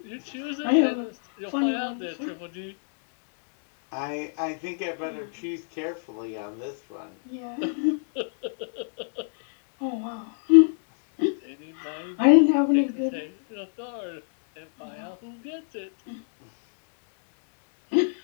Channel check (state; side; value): silent; right; 61 dB below the other